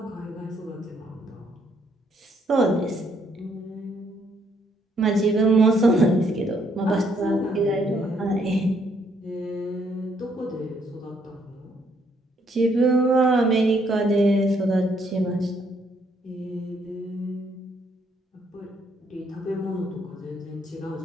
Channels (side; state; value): both; normal; correlation 0.70